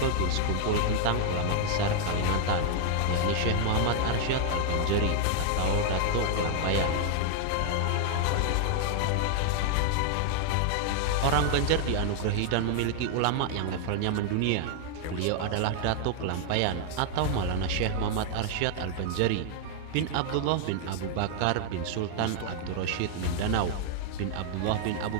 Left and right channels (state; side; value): different; both; correlation 0.00